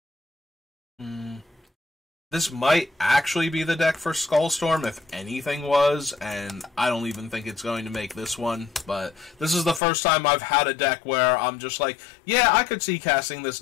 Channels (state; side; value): drops out; right; at 9.8 s